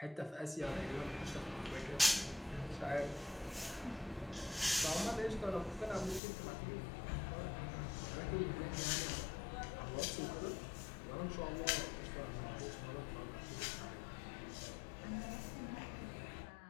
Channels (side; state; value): right; drops out; at 6.2 s